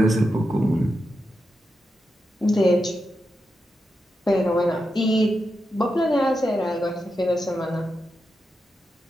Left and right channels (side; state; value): both; normal; correlation 0.87